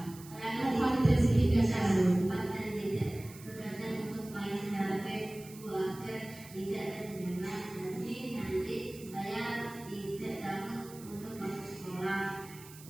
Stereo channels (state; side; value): noise; right; hiss, 19 dB below the sound